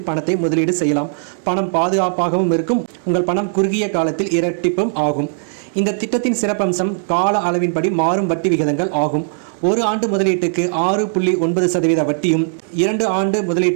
பணத்தை முதலீடு செய்யலாம். பணம் பாதுகாப்பாகவும் இருக்கும். உங்கள் பணம் குறுகிய காலத்தில் இரட்டிப்பும் ஆகும். இந்த திட்டத்தின் சிறப்பம்சம் கால அளவின்படி மாறும் வட்டி விகிதங்கள் ஆகும். 1 ஆண்டு முதலீட்டுக்கு 6.9% வட்டியும், 2 ஆண்டு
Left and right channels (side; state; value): left; silent; digital silence